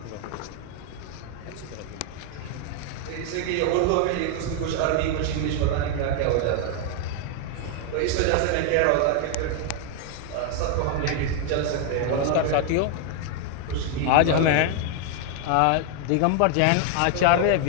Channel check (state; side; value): different; both; correlation 0.00